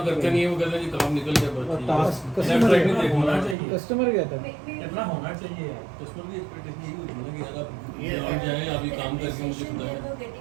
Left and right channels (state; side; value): drops out; left; at 3.6 s